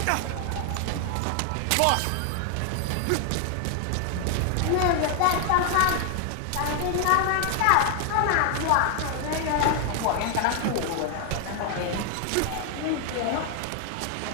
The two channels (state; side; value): different; both; correlation 0.00